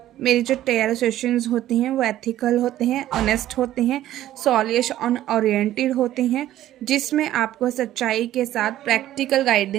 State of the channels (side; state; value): left; quieter; 13.4 dB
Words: मेरे जो टेयर सेशंस होते हैं वो एथिकल होते हैं, ऑनेस्ट होते हैं, सॉल्यूशन ओरिएंटेड होते हैं, जिसमें आपको सच्चाई के साथ प्रैक्टिकल